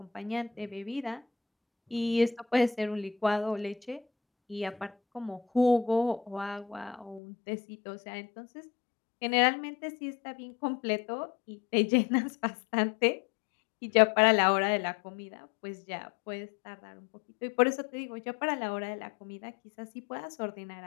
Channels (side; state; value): right; drops out; at 7.2 s